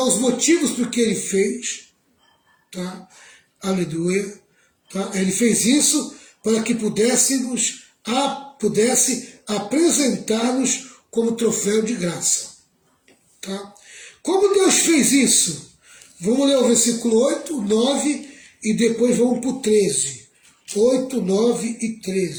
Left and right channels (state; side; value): identical; both; correlation 1.00